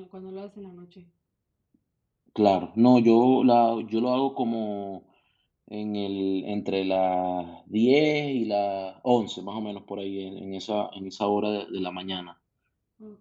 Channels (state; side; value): identical; both; correlation 1.00